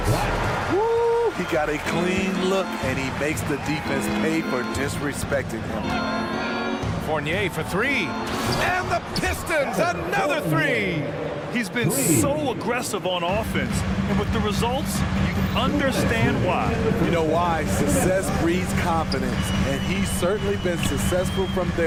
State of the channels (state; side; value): identical; both; correlation 1.00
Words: Woo! He got a clean look, and he makes the defense pay for disrespecting him. Fournier for three. And the Pistons, another three. He's been so aggressive on offense, and with the results, you understand why. You know why? Success breeds confidence, and he's certainly been successful from